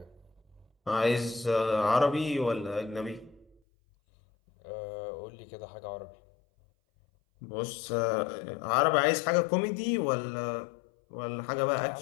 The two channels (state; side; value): drops out; right; at 3.6 s